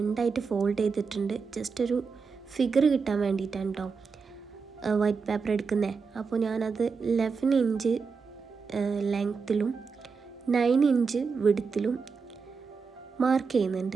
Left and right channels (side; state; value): left; quieter; 5.2 dB